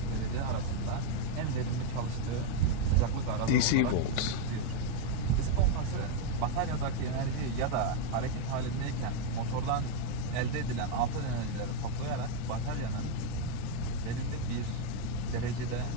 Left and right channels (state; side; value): different; both; correlation 0.02